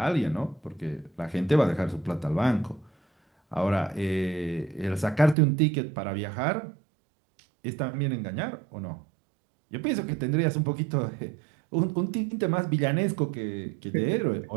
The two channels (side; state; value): left; drops out; at 5.4 s